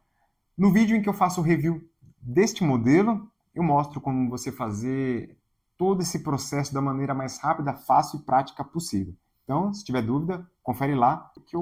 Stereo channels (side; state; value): both; identical; correlation 1.00